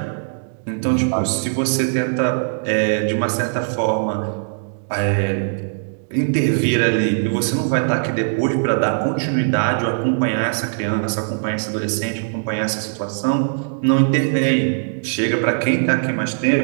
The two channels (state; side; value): silent; left; digital silence